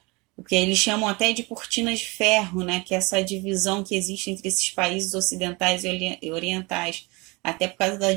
O que eles chamam até de cortinas de ferro, né? Que é essa divisão que existe entre esses países ocidentais e orientais, até por causa da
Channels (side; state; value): left; quieter; 26.4 dB